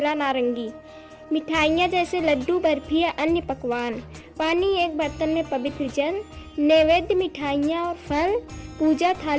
नारंगी, मिठाइयाँ जैसे लड्डू, बर्फी या अन्य पकवान, पानी, एक बर्तन में पवित्र जल, नैवेद्य, मिठाइयाँ और फल, पूजा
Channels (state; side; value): identical; both; correlation 1.00